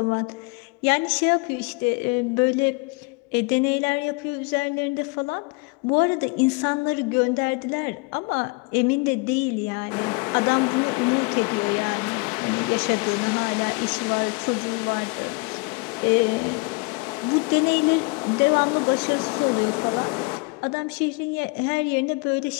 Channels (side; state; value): right; quieter; 29.5 dB